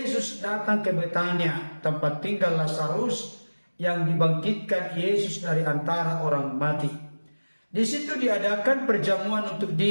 datang ke Betania, tempat tinggal Lazarus yang dibangkitkan Yesus dari antara orang mati. Di situ diadakan perjamuan untuk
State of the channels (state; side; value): inverted; both; correlation -1.00